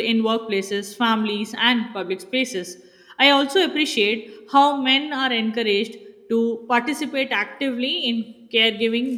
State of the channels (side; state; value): both; identical; correlation 1.00